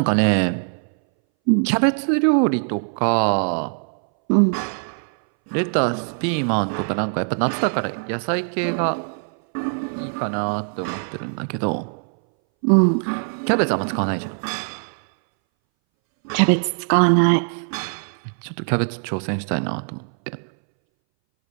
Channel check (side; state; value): left; silent; 62 dB below the other